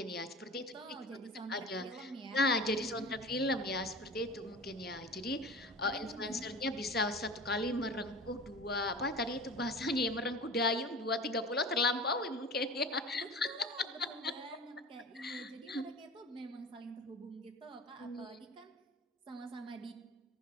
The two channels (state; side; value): normal; both; correlation 0.36